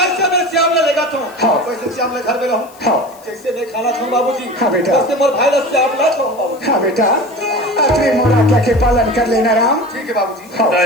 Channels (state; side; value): noise; left; hiss, 25 dB below the sound